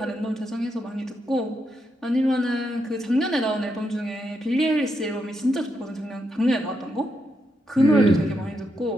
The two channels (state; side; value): normal; both; correlation 0.82